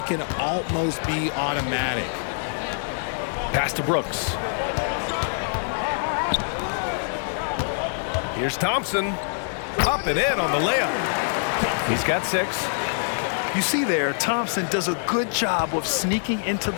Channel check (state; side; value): silent; right; digital silence